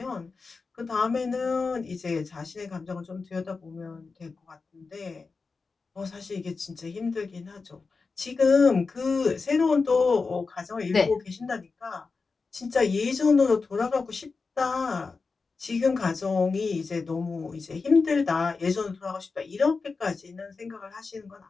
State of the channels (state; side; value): quieter; right; 4.4 dB